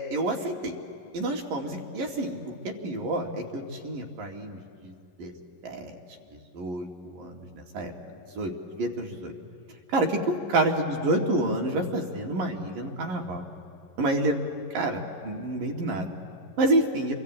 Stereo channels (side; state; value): left; late; 11 ms